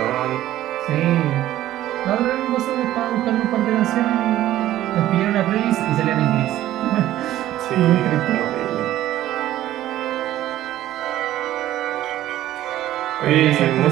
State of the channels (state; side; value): quieter; left; 13.8 dB